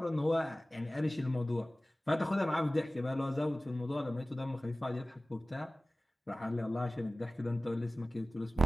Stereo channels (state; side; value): normal; both; correlation 0.97